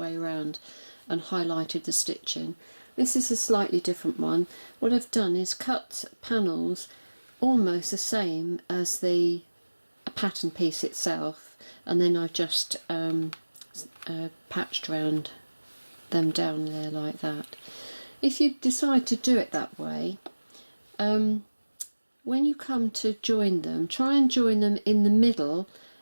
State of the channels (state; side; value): inverted; both; correlation -1.00